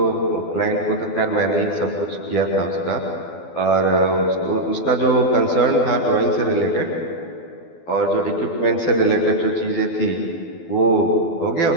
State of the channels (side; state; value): right; late; 12 ms